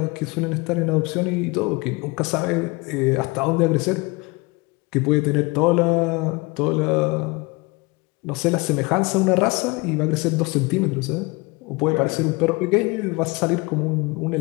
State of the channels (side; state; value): right; quieter; 25.4 dB